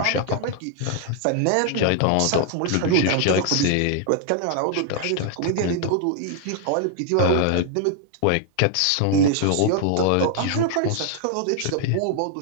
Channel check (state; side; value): different; both; correlation 0.00